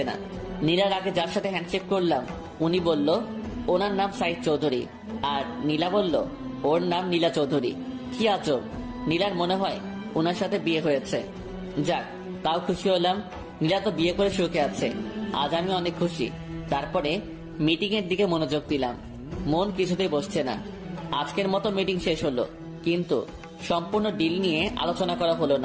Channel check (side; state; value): both; identical; correlation 1.00